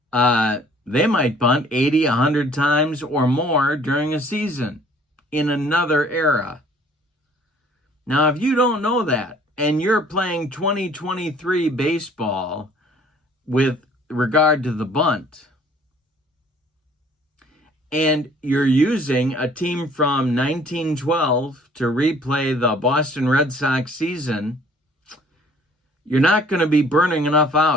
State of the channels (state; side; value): normal; both; correlation 0.56